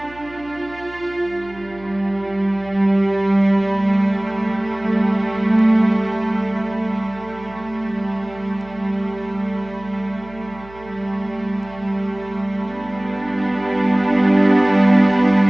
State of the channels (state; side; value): noise; right; hum, 21 dB below the sound